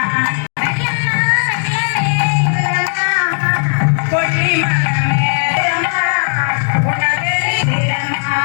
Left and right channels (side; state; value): right; silent; digital silence